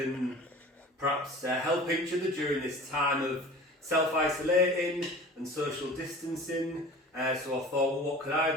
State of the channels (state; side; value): normal; both; correlation 0.40